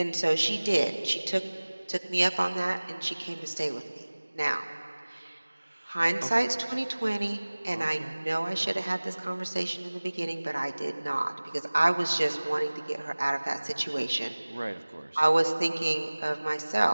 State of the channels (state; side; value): inverted; both; correlation -1.00